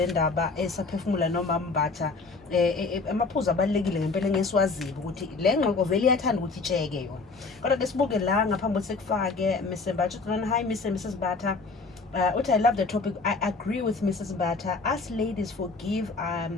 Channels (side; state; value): right; quieter; 4.1 dB